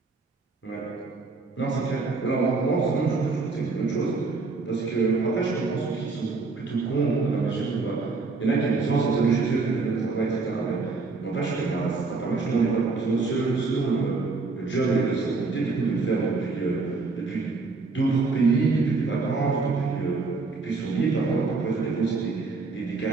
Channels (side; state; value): left; quieter; 4.0 dB